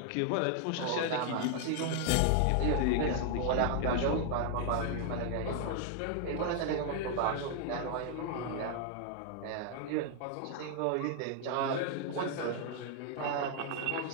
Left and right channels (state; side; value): different; both; correlation 0.00